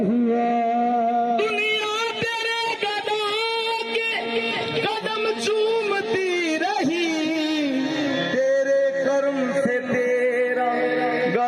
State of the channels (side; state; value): both; identical; correlation 1.00